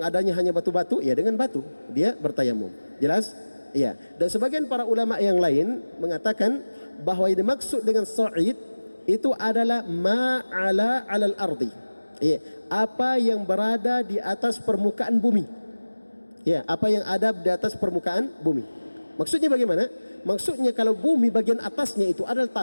adanya hanya batu-batu, ya, dengan batu dia bertayamum. Jelas? Ya. Dan sebagian para ulama yang lain mengatakan bahwa yang dimaksud dengan sa'id itu adalah ma'ala 'alal ardi. Ya, apa yang berada di atas permukaan bumi. Ya, apa yang ada di atas permukaan bumi. Maksudnya bagaimana? Maksudnya kalau bumi bagian atasnya itu adalah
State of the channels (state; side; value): inverted; both; correlation -1.00